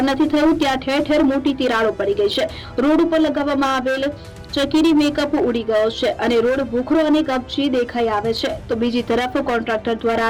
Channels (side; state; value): both; identical; correlation 1.00